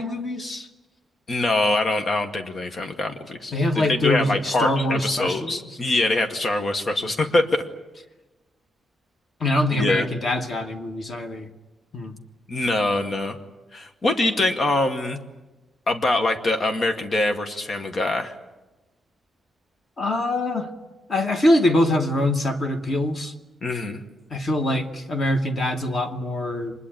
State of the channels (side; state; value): both; normal; correlation 0.80